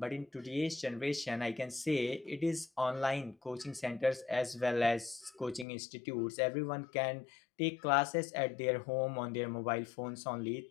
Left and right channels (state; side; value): drops out; right; at 5.7 s